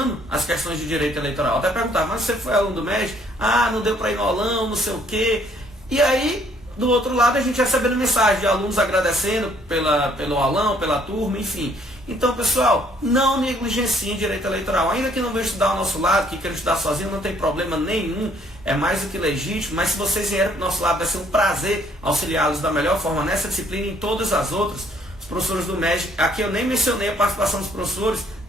as questões de direito eleitoral. Até perguntava, mas você foi aluno do MEG? Ah, não deu para ir no aulão, não sei o quê. E aí do outro lado a gente recebendo mensagem de alunos agradecendo pelo aulão, pela turma, enfim. Então, pessoal, não negligenciem direito eleitoral. Ainda que não venham estudar ao nosso lado, que queiram estudar sozinho, não tem problema nenhum, é mais do que legítimo, mas se vocês vierem para o nosso lado, vai ser um prazer auxiliá-los da melhor forma nessa disciplina e em todas as outras. Os professores do MEG, aqui eu nem mencionei a participação dos professores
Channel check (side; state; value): both; normal; correlation 0.64